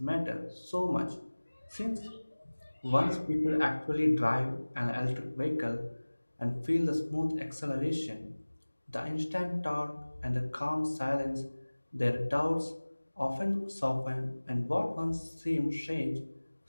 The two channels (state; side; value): inverted; both; correlation -1.00